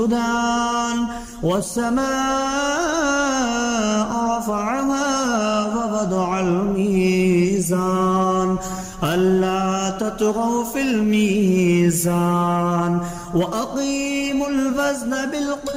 والسماء رفعها ووضع الميزان ألا تطغوا في الميزان وأقيموا الوزن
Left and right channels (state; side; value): identical; both; correlation 1.00